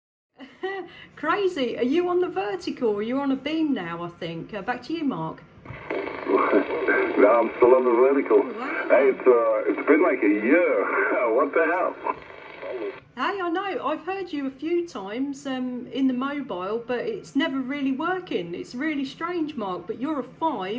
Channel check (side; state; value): both; identical; correlation 1.00